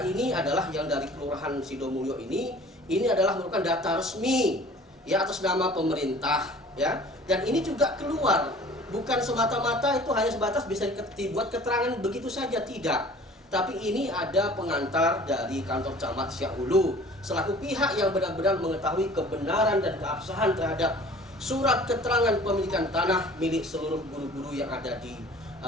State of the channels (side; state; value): both; normal; correlation 0.47